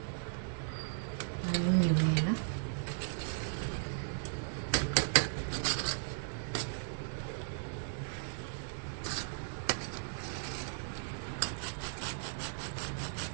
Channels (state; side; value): silent; left; 53 dB below the other